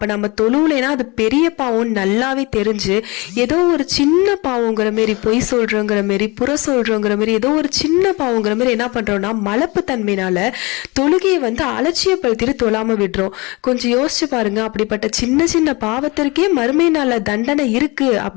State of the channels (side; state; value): right; quieter; 25.3 dB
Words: நம்ம தொழுலேனா அது பெரிய பாவம் நல்லாவே தெரிஞ்சு ஏதோ ஒரு சின்ன பாவங்கிற மாரி, பொய் சொல்றோங்கிற மாரி, புற சொல்றோங்கிற மாரி, ஏதோ ஒரு சின்ன பாவங்கிற மாரி என்ன பண்றோம்னா மலப்பு தன்மையினால தொழுகையை வந்து அலட்சியப்படுத்திட்டு தொழாம விடுறோம். கொஞ்சம் யோசிச்சு பாருங்க. அப்படிப்பட்ட சின்ன சின்ன பாவத்திற்கே மறுமை நாள்ல தண்டனை இருக்கு